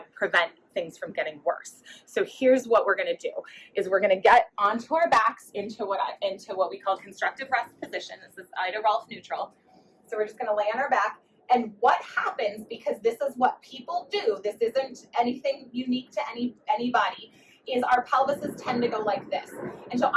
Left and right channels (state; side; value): identical; both; correlation 1.00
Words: prevent things from getting worse. So here's what we're going to do: is we're going to get onto our backs into what we call constructive rest position. This is Ida Rolf neutral. So we're just going to lay on our back. And what happens, because this is what people do, this isn't anything unique to anybody, is our pelvises tend to go like this. And so